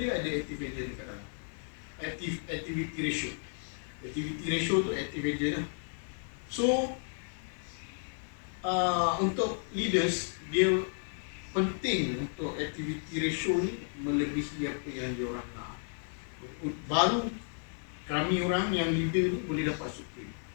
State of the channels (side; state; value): right; silent; 56 dB below the other